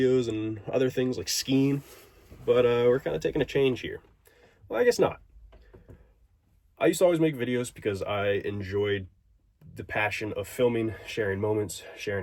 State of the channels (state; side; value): identical; both; correlation 1.00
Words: and other things like skiing. But we're kind of taking a change here. Well, I guess not. I used to always make videos because I enjoyed the passion of filming, sharing moments,